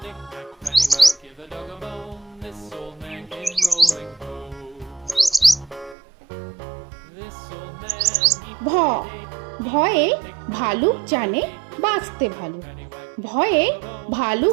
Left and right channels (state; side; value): drops out; left; at 6.0 s